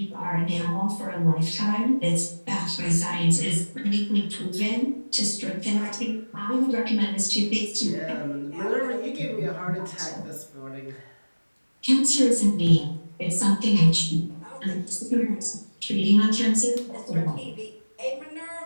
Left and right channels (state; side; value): inverted; both; correlation -1.00